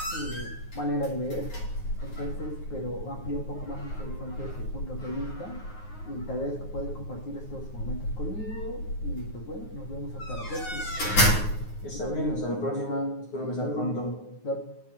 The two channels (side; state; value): right; late; 9.5 ms